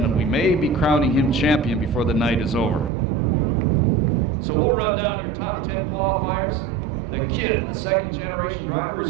we may be crowning him champion before the night is over. So we'll run down your top 10 qualifiers. The kid, the second generation driver, his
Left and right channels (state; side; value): drops out; left; at 2.9 s